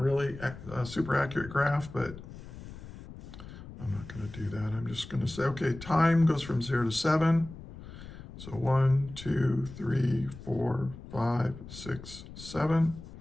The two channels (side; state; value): left; noise; rumble, 14 dB below the sound